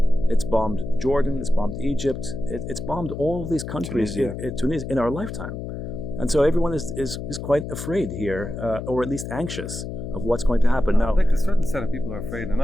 it's bombed Jordan, it's bombed Egypt, it's bombed all these countries Tunisia in our lifetime. And so everyone is quite afraid here, or at least anxious of what's going to happen. Now, I think a certain set of people are afraid,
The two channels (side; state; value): left; noise; hum, 7 dB below the sound